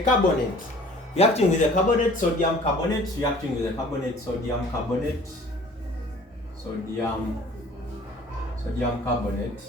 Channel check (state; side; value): normal; both; correlation 0.50